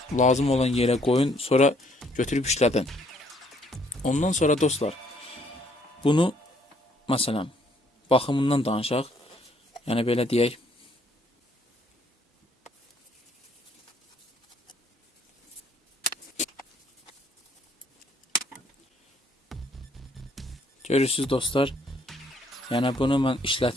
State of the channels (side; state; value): both; normal; correlation 0.66